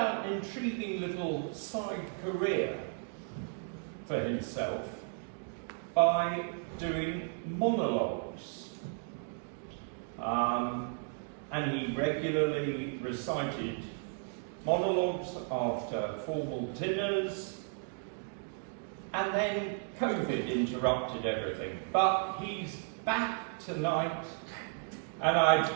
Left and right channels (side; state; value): left; silent; 55 dB below the other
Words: an intriguing little side career for himself by doing monologues. And he regularly recited monologues after formal dinners, and then COVID interrupted everything. But he's back tonight, and I'd